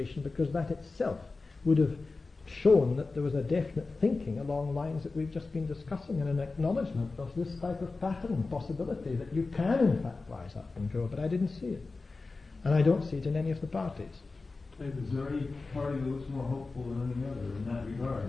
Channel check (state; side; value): quieter; right; 3.8 dB